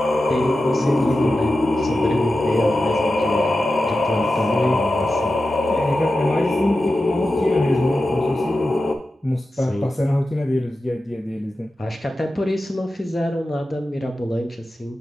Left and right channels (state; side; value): normal; both; correlation 0.93